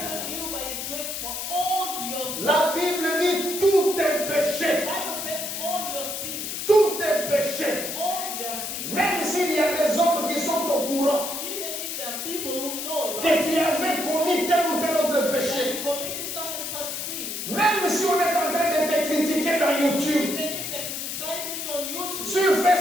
you by his grace for all your sins. La Bible dit tous tes The péchés. Bible says all your sins. Tous tes péchés. All your sins. Même s'il y a des hommes qui sont au courant Even if there are people who know about que tu avais commis tel ou tel autre that péché. you committed such and such sin, Même si on est en train de te critiquer dans YouTube, even if they're criticizing you on YouTube, sur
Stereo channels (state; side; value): noise; left; hiss, 5 dB below the sound